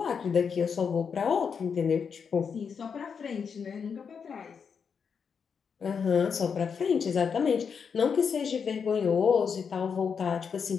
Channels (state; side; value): quieter; right; 6.3 dB